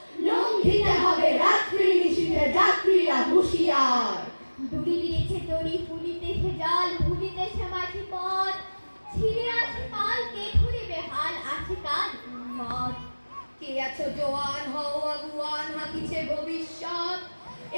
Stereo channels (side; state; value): both; inverted; correlation -1.00